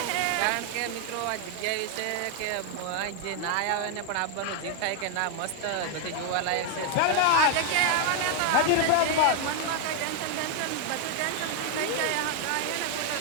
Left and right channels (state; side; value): different; both; correlation 0.00